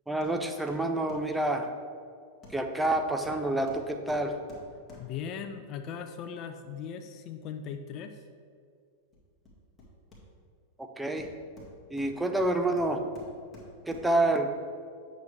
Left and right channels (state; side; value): normal; both; correlation 0.55